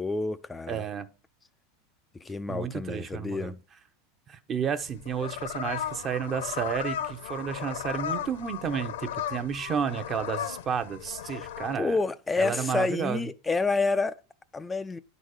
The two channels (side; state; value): both; normal; correlation 0.58